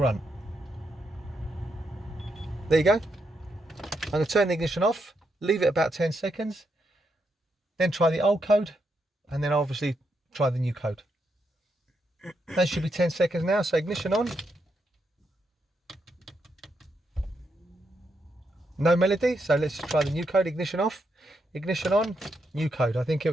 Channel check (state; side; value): normal; both; correlation 0.81